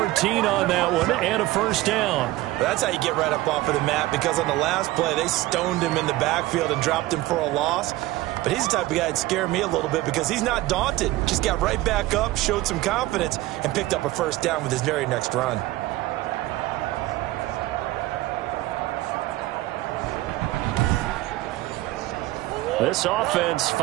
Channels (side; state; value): left; quieter; 17.6 dB